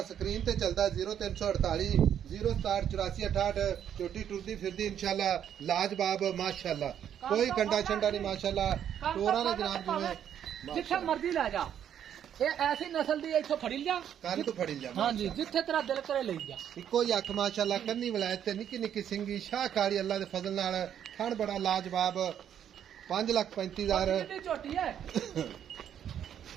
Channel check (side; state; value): left; quieter; 9.5 dB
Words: ਸਕਰੀਨ ਤੇ ਚੱਲਦਾ 0348 0678468 ਝੋਟੀ ਟੁਰਦੀ ਫਿਰਦੀ ਇਨਸ਼ਾਅੱਲਾ ਲਾਜਵਾਬ ਮਾਸ਼ਾਅੱਲਾ ਕੋਈ ਕੰਡਾ ਛੰਡਾ ਨਹੀਂ ਮਾਸ਼ਾਅੱਲਾ ਟੋਰਾ ਨੇ ਜਨਾਬ ਜਿਵੇਂ ਜਿੱਥੇ ਮਰਜ਼ੀ ਲੈ ਜਾ ਇਹ ਐਸੀ ਨਸਲ ਦੀ ਇੱਥੋਂ ਫੜੀ ਲਿਆ ਕੰਨ ਤੋਂ ਫੜੀ ਲਿਆ ਹਾਂਜੀ ਜਿੱਥੇ ਤੇਰਾ ਦਿਲ ਕਰੇ ਲਈ ਜਾ ਇੱਕੋ ਹੀ ਅੱਖ ਮਾਸ਼ਾਅੱਲਾ ਕੰਨੀ ਵਲਾਇਤ ਤੇ ਨਿੱਕੀ ਨਿੱਕੀ ਸਿੰਗੀ ਸ਼ਾਹਕਾਰੀ ਅੱਲਾ ਦੇ ਫਜ਼ਲ ਨਾਲ ਥਣ ਬੜਾ ਲਾਜਵਾਬ 5,35,000 ਕਿੰਨੀ ਝੋਟੀ ਹੈ